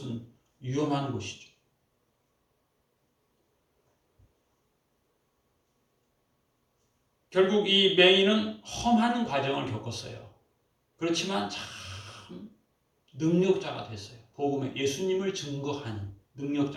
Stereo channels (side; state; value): both; identical; correlation 1.00